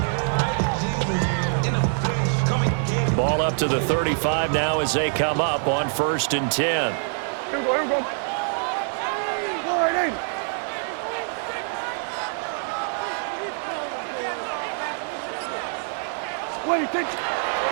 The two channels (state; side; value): silent; left; 61 dB below the other